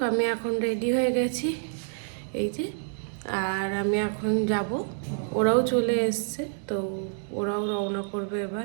আমি এখন রেডি হয়ে গেছি এই যে, আর আমি এখন যাব। ওরাও চলে এসছে, তো ওরাও রওনা করবে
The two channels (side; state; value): left; silent; digital silence